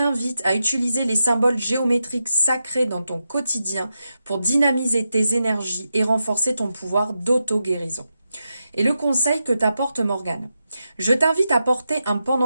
à utiliser les symboles géométriques sacrés dans ton quotidien pour dynamiser tes énergies et renforcer ton pouvoir d'auto-guérison. Et le conseil que t'apporte Morgane. Je t'invite à porter un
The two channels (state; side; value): inverted; both; correlation -0.88